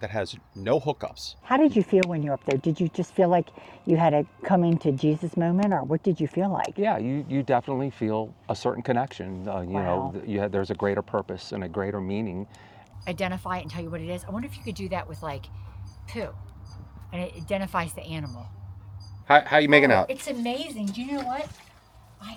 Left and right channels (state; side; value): identical; both; correlation 1.00